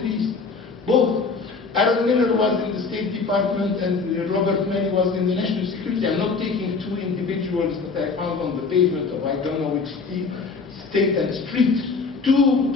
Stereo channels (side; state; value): right; quieter; 4.5 dB